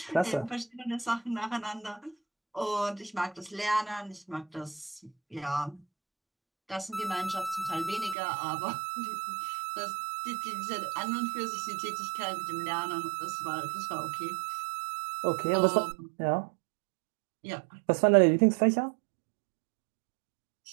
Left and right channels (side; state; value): left; drops out; at 8.2 s